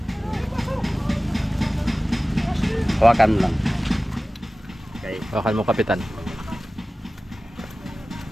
Hawakan mo lang. Okay. Hawakan mo kapitan.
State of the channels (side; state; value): both; normal; correlation 0.97